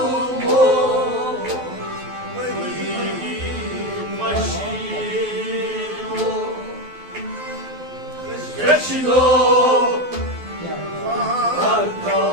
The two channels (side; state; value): left; late; 12 ms